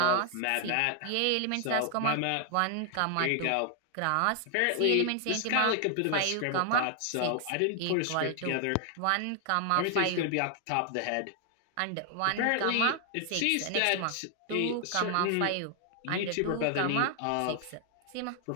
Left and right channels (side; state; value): both; different; correlation 0.00